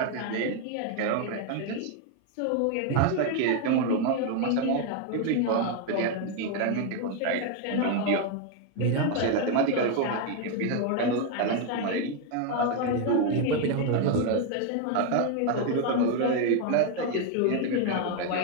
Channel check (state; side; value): different; both; correlation 0.01